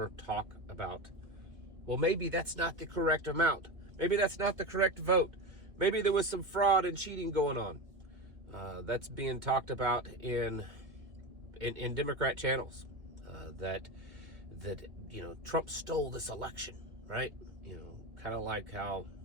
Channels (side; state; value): left; late; 2.0 ms